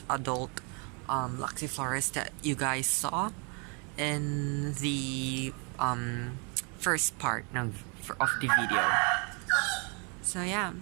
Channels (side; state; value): left; quieter; 34.5 dB